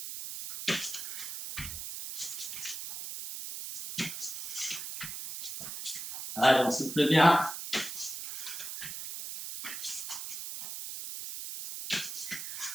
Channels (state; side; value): noise; right; hiss, 7 dB below the sound